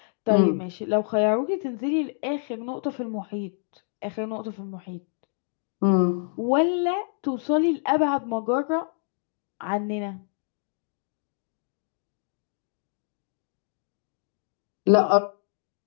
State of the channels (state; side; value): silent; right; digital silence